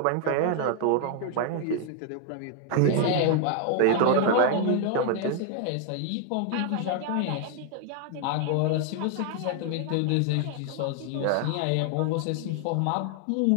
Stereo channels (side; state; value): both; different; correlation 0.00